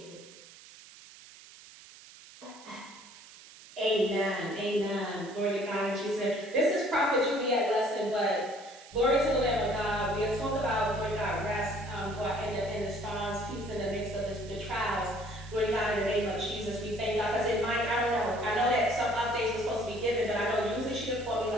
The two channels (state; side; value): noise; right; hiss, 20 dB below the sound